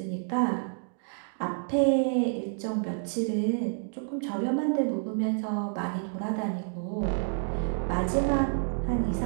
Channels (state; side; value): silent; left; digital silence